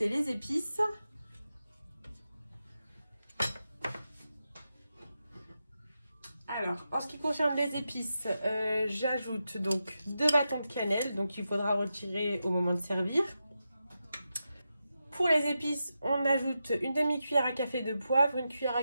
les épices. Alors, en ce qui concerne les épices, j'ajoute donc 2 bâtons de cannelle, donc il faudra retirer au moment de servir. Pour les épices, on ajoute une demi-cuillère à café de poivre, une cuillère à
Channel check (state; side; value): inverted; both; correlation -0.89